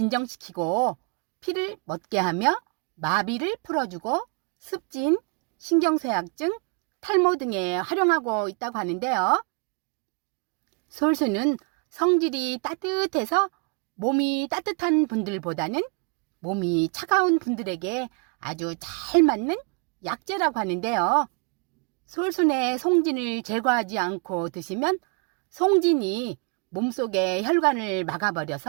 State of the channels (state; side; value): quieter; left; 35.6 dB